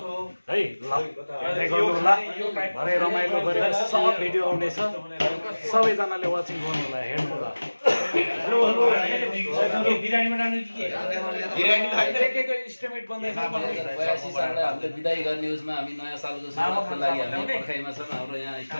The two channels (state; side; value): inverted; both; correlation -1.00